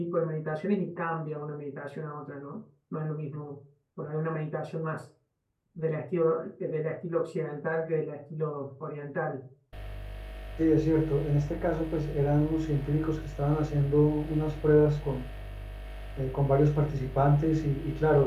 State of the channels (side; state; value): both; identical; correlation 1.00